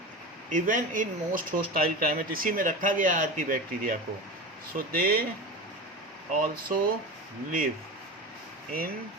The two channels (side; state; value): both; normal; correlation 0.28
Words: even in most hostile climate. इसी में रखा गया आर्की बैक्टीरिया को. So they also live in